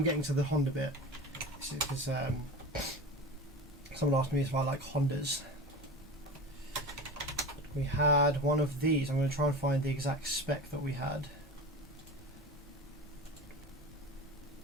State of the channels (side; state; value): both; normal; correlation 0.31